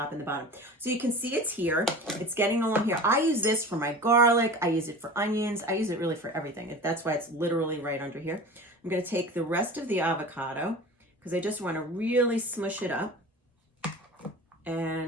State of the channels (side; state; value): both; normal; correlation 0.36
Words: and the bottom. So you can see it's here, it's getting along here. I use this for my garlic, I use it for onions, I use it really for everything. That's why it's literally right under here. I'm going to take the rest of the avocado because I just want to really smush it up